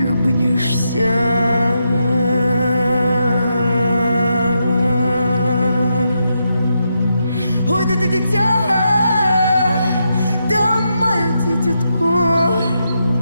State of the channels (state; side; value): inverted; both; correlation -0.83